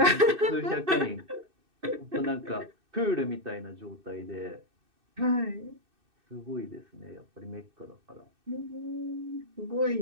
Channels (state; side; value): late; left; 2.6 ms